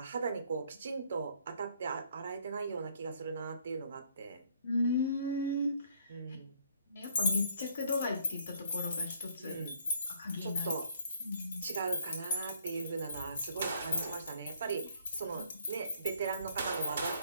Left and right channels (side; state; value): both; inverted; correlation -0.63